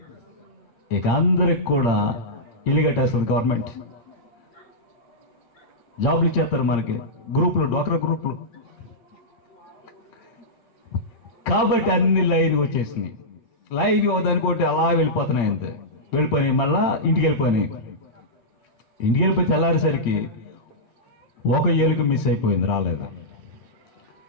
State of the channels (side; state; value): right; late; 8.6 ms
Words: ఇక అందరికి కూడా ఇల్లు కట్టేస్తుంది గవర్నమెంట్, జాబులు ఇచ్చేస్తారు మనకి, గ్రూపులు, డ్వాక్రా గ్రూపులు. కాబట్టి అన్ని లైన్కి వచ్చేసినాయి. లైన్కి ఒకదానికోటి అలా వెళ్ళిపోతున్నాయి, అంతే. వెళ్ళిపోయి మళ్ళా ఇంటికి వెళ్ళిపోయి తెల్లారేసరికి ఒక ఏలుక మిస్ అయిపోయింది, రాలేదు.